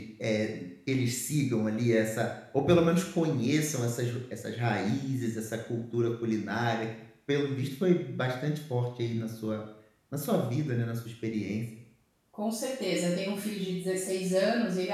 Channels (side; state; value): both; identical; correlation 1.00